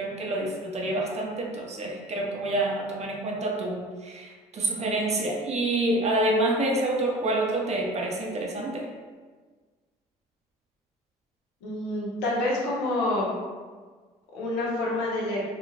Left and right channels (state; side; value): normal; both; correlation 0.39